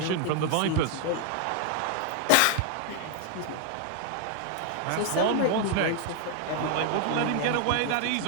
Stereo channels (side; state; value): both; different; correlation 0.01